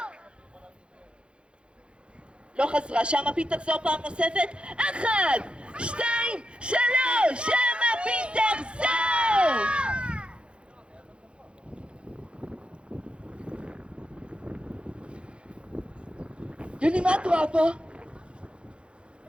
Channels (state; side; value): late; left; 0.057 ms